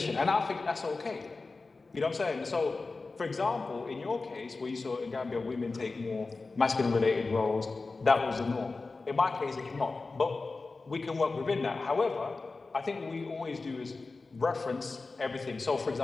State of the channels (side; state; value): right; quieter; 3.8 dB